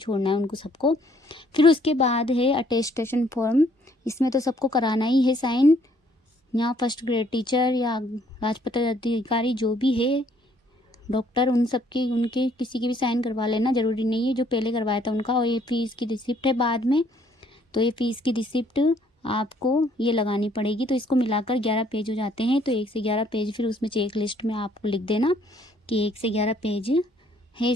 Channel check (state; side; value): normal; both; correlation 0.64